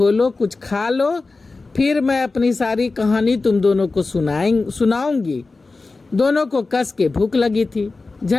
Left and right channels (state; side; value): quieter; right; 3.7 dB